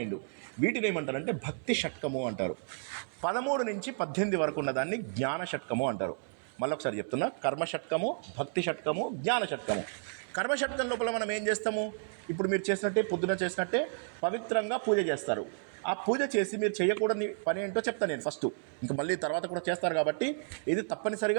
వీటిని ఏమంటారంటే భక్తి షట్కము అంటారు. 13 నుంచి 18 వరకు ఉన్నదాన్ని జ్ఞాన షట్కము అంటారు. మళ్ళీ ఒకసారి చెప్తున్నా, కర్మ షట్కము, భక్తి షట్కము, జ్ఞాన షట్కము. కర్మ షట్కం లోపల మనం ఏం చేస్తాము? ఇప్పుడు మీరు చేసినట్టే, పొద్దున చేసినట్టే పవిత్రంగా పూజ చేస్తారు. ఆ పూజ చేసి మీరు చేయకూడని పని ఏంటో చెప్తాను నేను ఫస్ట్. ఇంకా మళ్ళీ తర్వాత కూడా చేస్తారు కాబట్టి ఇది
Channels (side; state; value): left; silent; 56 dB below the other